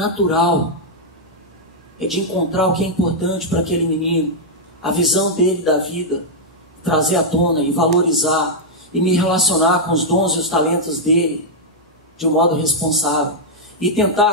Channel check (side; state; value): both; normal; correlation -0.04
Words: É de encontrar o que é importante para aquele menino. A visão dele da vida. Trazer à tona e valorizar. E me relacionar com os dons e os talentos dele. De um modo responsável. E